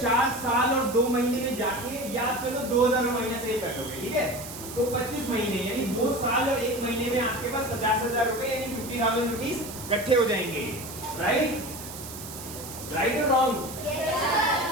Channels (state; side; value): noise; right; hiss, 12 dB below the sound